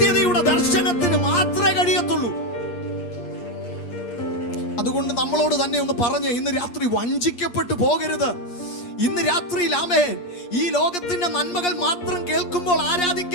ദർശനത്തിന് മാത്രമേ കഴിയത്തുള്ളൂ. അതുകൊണ്ട് നമ്മളോട് തന്നെ ഒന്ന് പറഞ്ഞ് ഇന്ന് രാത്രി വഞ്ചിക്കപ്പെട്ടു പോകരുത്. ഇന്ന് രാത്രിയിൽ ഈ ലോകത്തിന്റെ നന്മകൾ മാത്രം കേൾക്കുമ്പോൾ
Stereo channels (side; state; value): right; late; 8.5 ms